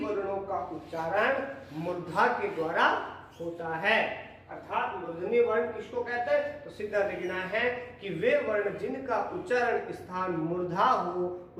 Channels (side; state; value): both; identical; correlation 1.00